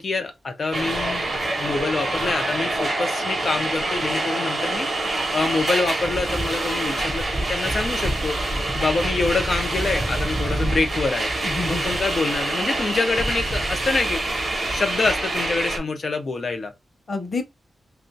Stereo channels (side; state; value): both; normal; correlation 0.87